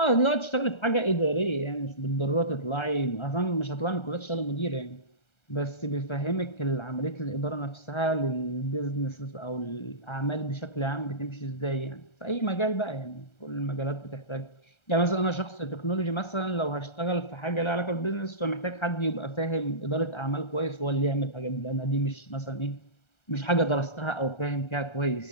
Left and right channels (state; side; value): late; right; 1.3 ms